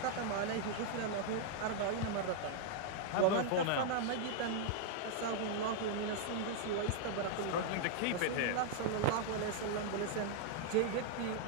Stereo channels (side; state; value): both; different; correlation -0.01